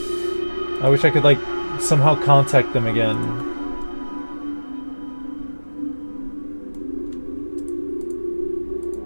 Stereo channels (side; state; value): both; inverted; correlation -1.00